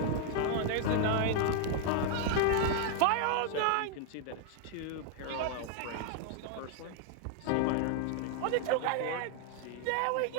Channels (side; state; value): both; different; correlation 0.00